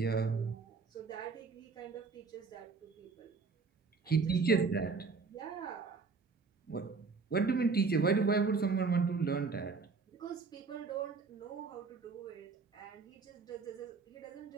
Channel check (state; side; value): quieter; left; 4.6 dB